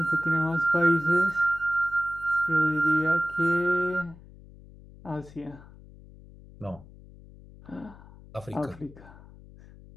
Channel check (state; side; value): noise; left; hum, 21 dB below the sound